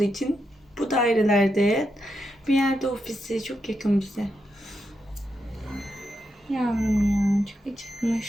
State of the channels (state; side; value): normal; both; correlation 0.84